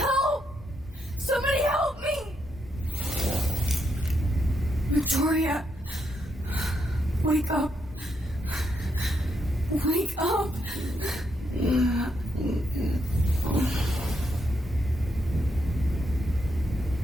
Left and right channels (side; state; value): both; normal; correlation 0.79